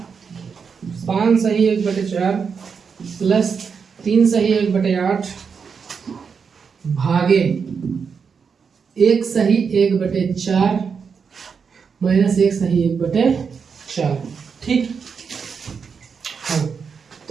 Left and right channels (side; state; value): left; quieter; 6.0 dB